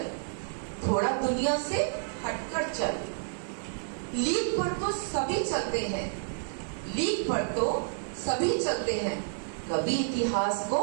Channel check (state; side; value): silent; left; digital silence